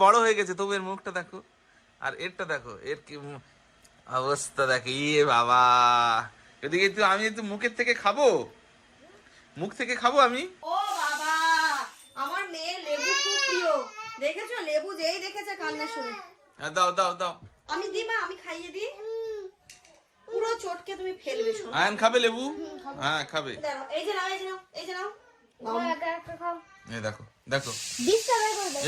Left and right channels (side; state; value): both; identical; correlation 1.00